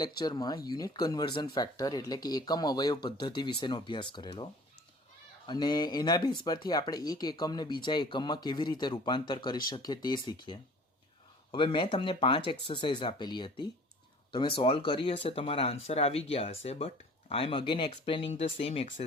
લેક્ચરમાં unit conversion factor એટલે કે એકમ અવયવ પદ્ધતિ વિશેનો અભ્યાસ કરેલો અને એના બેઝ પરથી આપણે એક એકમને બીજા એકમમાં કેવી રીતે રૂપાંતર કરી શકીએ તે શીખીએ. હવે મેં તમને 5 એક્સરસાઇઝ આપેલી હતી, તમે સોલ્વ કરી હશે, તમારા આન્સર આવી ગયા હશે, but I am again explaining the same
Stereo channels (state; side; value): normal; both; correlation 0.48